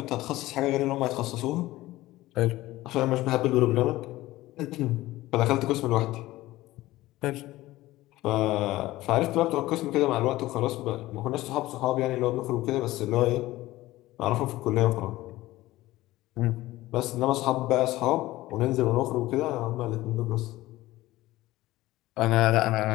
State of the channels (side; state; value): right; quieter; 17.3 dB